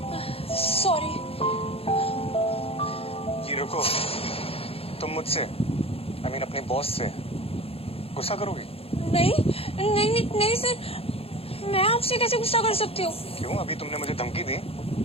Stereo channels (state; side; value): late; right; 0.28 ms